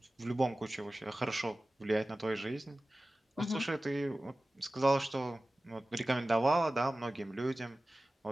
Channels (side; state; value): both; normal; correlation 0.97